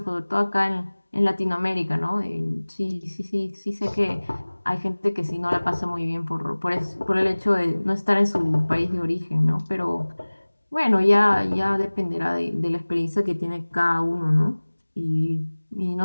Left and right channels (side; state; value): both; inverted; correlation -1.00